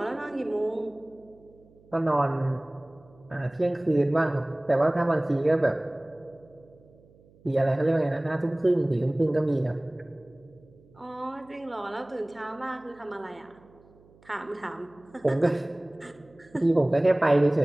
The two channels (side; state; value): right; noise; hum, 28 dB below the sound